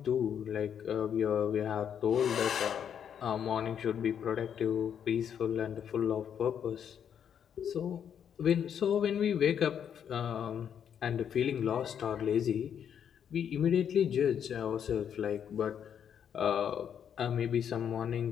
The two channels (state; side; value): quieter; right; 8.5 dB